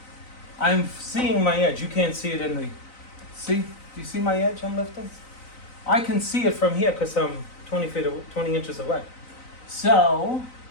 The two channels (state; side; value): late; right; 3.9 ms